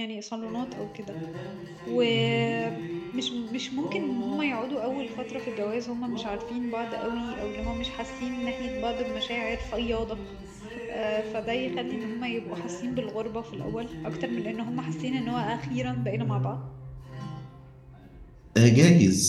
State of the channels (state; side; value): identical; both; correlation 1.00